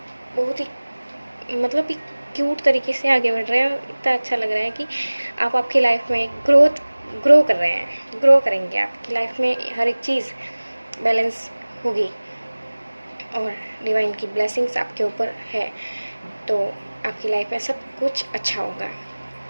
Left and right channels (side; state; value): both; inverted; correlation -1.00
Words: मतलब एक क्यूट तरीके से आगे बढ़ रहे हैं। इतना अच्छा लग रहा है कि आप आपकी लाइफ में ग्रो कर रहे हैं, ग्रो करेंगे। आपकी लाइफ में हर एक चीज़ बैलेंस होगी और डिवाइन की ब्लेसिंग्स आपके ऊपर है, तो आपकी लाइफ में सब कुछ अच्छा होगा